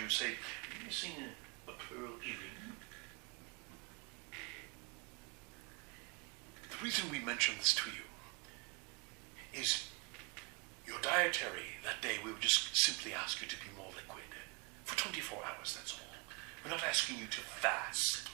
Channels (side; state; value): left; quieter; 30.3 dB